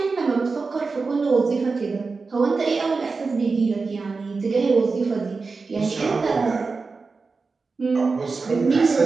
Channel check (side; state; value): left; quieter; 4.3 dB